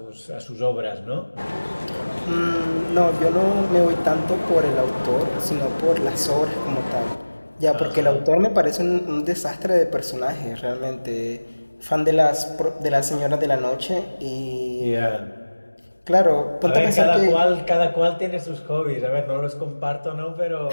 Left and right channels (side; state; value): both; inverted; correlation -1.00